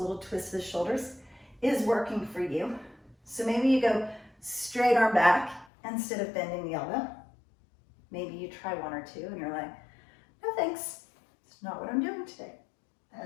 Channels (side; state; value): right; drops out; at 5.7 s